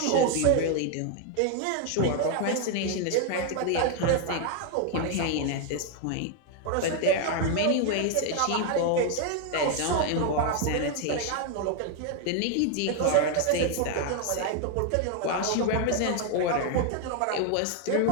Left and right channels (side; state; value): both; different; correlation 0.00